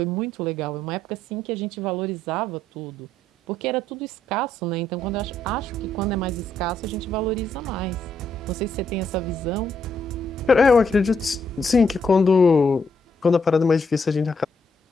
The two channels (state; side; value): normal; both; correlation 0.74